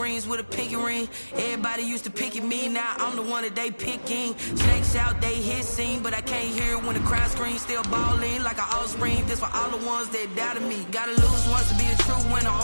with a pinky ring. Everybody used to pick at me, now I'm the one that they picking. Snakes out, they hit scene, but I can't hear it when the crowd screams. Still balling like an offspring. This for all the ones that doubted me. Gotta lose once to be a true winner.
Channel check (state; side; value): inverted; both; correlation -1.00